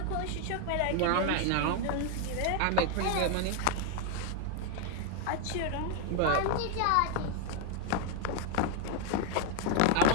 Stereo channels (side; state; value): both; different; correlation 0.00